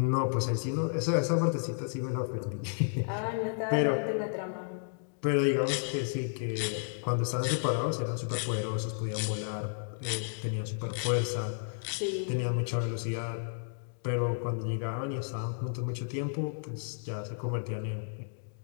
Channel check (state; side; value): silent; right; digital silence